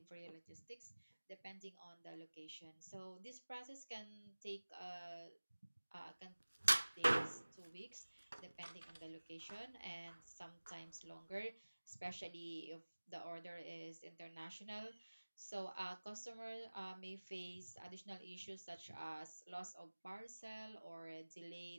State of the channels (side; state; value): both; inverted; correlation -1.00